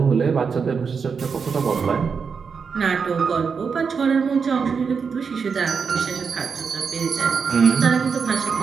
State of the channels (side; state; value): left; quieter; 5.8 dB